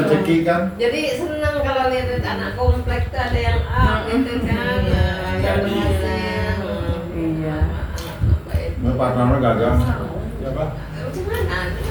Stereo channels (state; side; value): identical; both; correlation 1.00